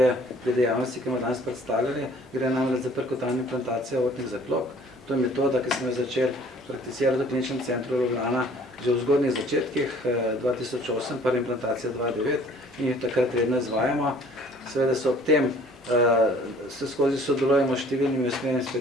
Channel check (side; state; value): both; normal; correlation 0.54